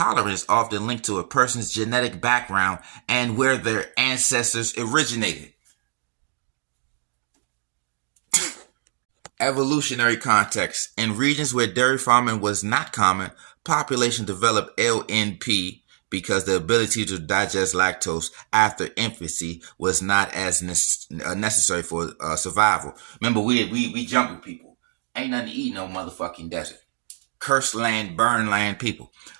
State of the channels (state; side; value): silent; left; digital silence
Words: is often linked to a person's genetic background and where their ancestors originated. Evolutionary context. In regions where dairy farming was not common, population developed LNP because the ability to digest lactose after infancy was not as necessary for survival. Remember, we jungle people. Ain't nothing to eat no motherfucking desert. Cursed land, burn land people.